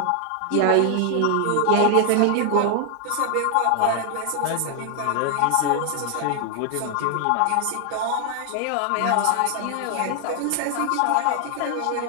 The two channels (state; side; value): different; both; correlation 0.00